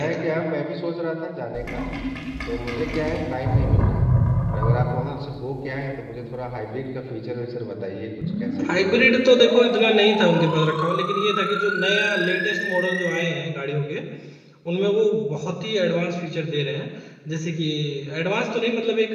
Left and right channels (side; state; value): both; identical; correlation 1.00